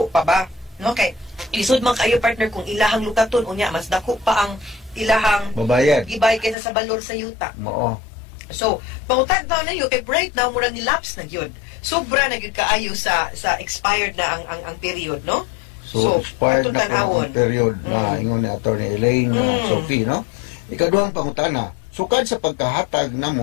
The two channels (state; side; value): drops out; right; at 6.6 s